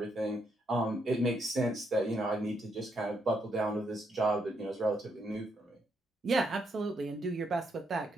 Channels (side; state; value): both; normal; correlation 0.77